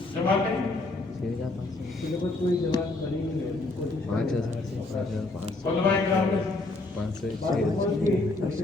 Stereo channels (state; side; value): quieter; right; 3.1 dB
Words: जमाते कोई जमात बनी नहीं है। 5,000 से 5,500 उलमाए कराम 500